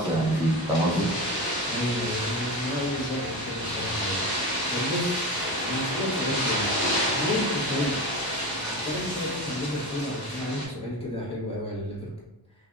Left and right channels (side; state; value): both; normal; correlation 0.25